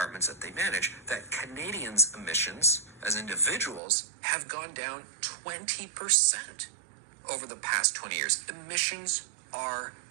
that they manage, that Canadians' emissions as individuals have gone down 20% over the past 20 years. Emissions are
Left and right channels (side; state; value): left; drops out; at 3.8 s